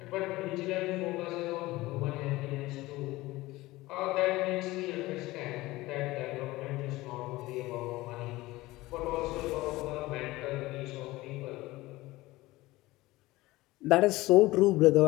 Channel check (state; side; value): quieter; right; 19.0 dB